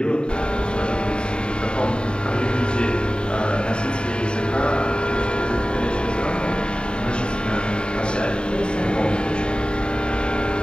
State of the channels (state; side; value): late; right; 0.052 ms